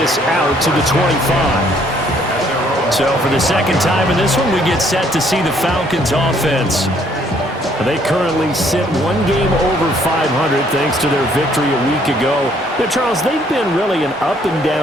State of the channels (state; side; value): normal; both; correlation 0.64